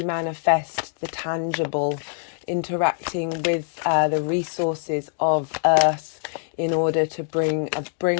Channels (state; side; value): silent; right; digital silence